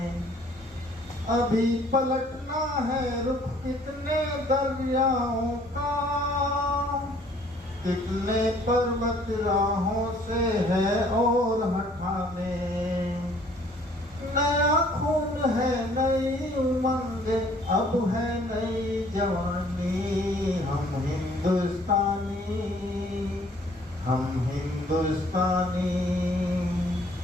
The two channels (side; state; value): both; normal; correlation 0.58